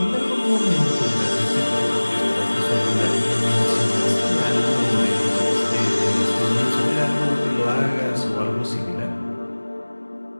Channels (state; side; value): inverted; both; correlation -1.00